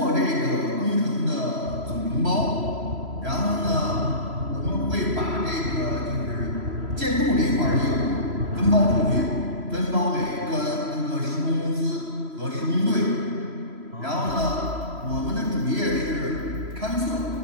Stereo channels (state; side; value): late; left; 3.0 ms